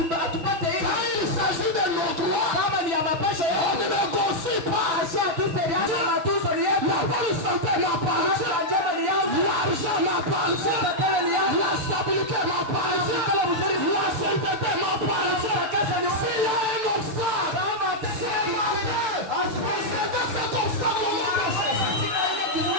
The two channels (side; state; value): left; late; 6.8 ms